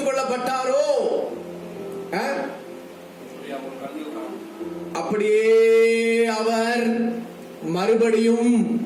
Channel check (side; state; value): both; identical; correlation 1.00